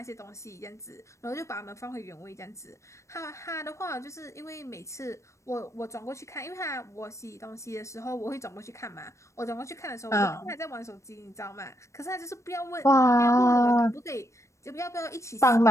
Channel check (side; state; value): right; late; 0.14 ms